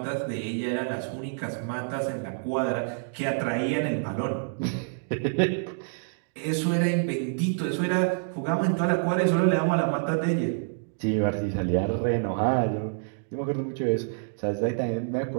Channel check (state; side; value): silent; left; digital silence